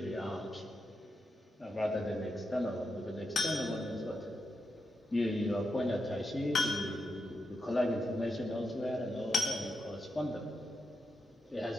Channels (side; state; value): both; normal; correlation 0.85